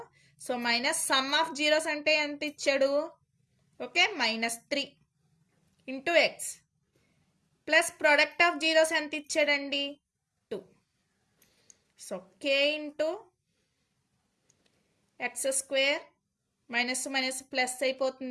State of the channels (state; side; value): identical; both; correlation 1.00